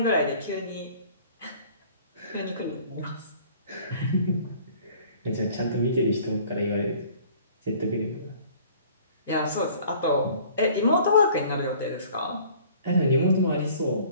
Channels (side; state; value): both; inverted; correlation -0.52